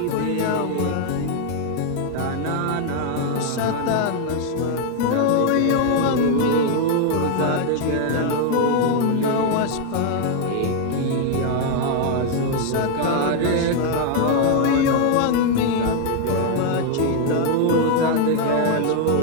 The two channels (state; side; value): different; both; correlation 0.00